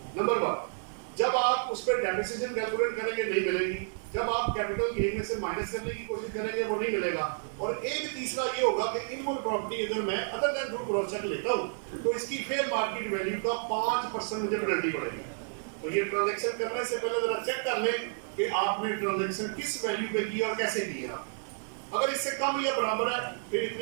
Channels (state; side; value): silent; left; digital silence